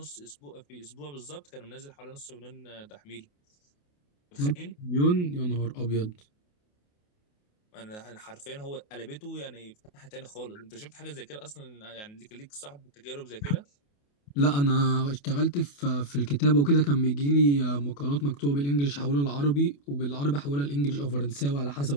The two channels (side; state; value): right; late; 28 ms